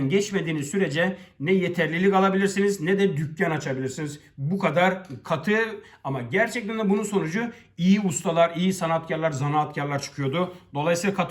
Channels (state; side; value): identical; both; correlation 1.00